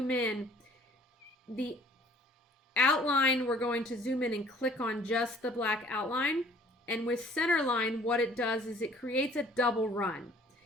in, the outline, we're going to zoom in and click on just the black outline. And with centerline, what it does is it creates a double run.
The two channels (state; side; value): normal; both; correlation 0.55